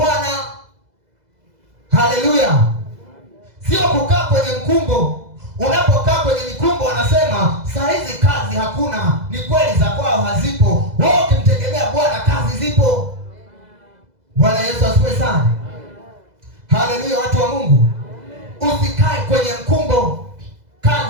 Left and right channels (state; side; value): late; left; 2.0 ms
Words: Haleluya! Sio kukaa kwenye mkumbo. Unapokaa kwenye mikumbo wanasema saa hizi kazi hakuna. Ni kweli, za kwao hazipo. Wewe ukimtegemea Bwana, kazi zipo. Bwana Yesu asifiwe sana. Haleluya, watu wa Mungu. Usikae kwenye mkumbo.